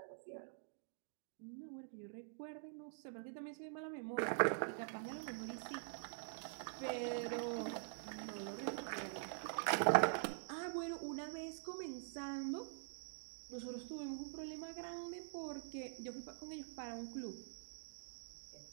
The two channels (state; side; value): silent; left; digital silence